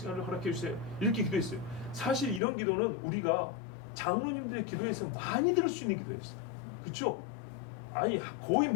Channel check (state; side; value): drops out; right; at 2.4 s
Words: 허락해 주세요. 이렇게 기도했어요. 사실 이런 기도는 우리가 장로님들의 기도에서 많이 들을 수 있는 기도였어요. 그렇죠? 아니 거의